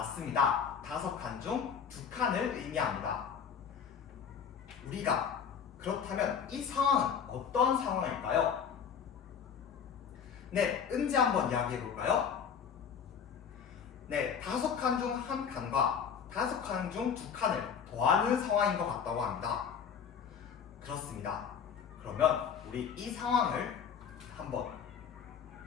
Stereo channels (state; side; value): quieter; right; 7.2 dB